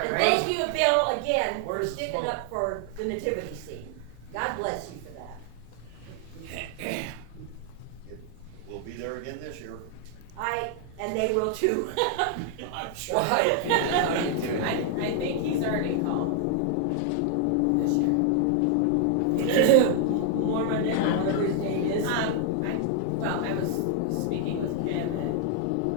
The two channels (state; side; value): different; both; correlation 0.00